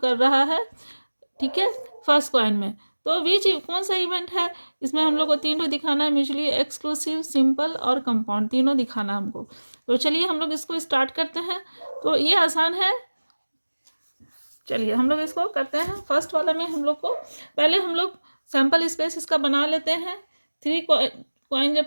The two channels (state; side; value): inverted; both; correlation -1.00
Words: रहा है, ठीक है, फर्स्ट कॉइन में। तो बीच कौन सा इवेंट है, इसमें हम लोग को तीनों दिखाना है, म्यूचुअली एक्सक्लूसिव, सिंपल और कंपाउंड, तीनों दिखाना हमको। तो चलिए हम लोग इसको स्टार्ट करते हैं। तो ये आसान है, चलिए हम लोग इसको करते हैं। फर्स्ट वाला में हम लोग को पहले हम लोग सैंपल स्पेस इसका बना लेते हैं। 3 कॉइन